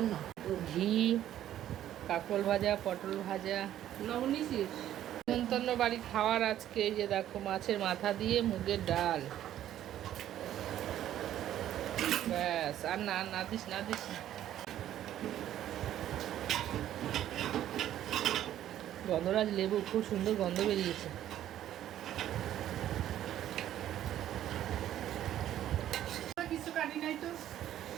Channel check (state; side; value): quieter; left; 11.9 dB